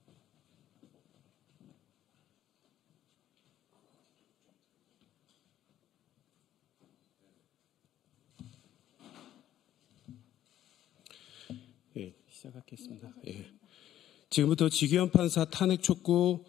예, 시작하겠습니다. 예. 지금부터 지규현 판사 탄핵 촉구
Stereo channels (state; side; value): quieter; right; 12.1 dB